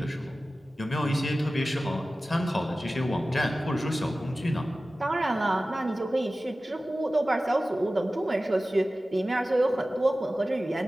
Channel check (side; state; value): both; normal; correlation 0.96